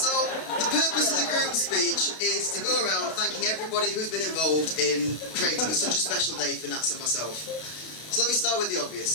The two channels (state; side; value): late; right; 32 ms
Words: the purpose of the Groom speech is to go around thanking everybody who's been involved in creating such a special day for Nats and myself. So let me start with the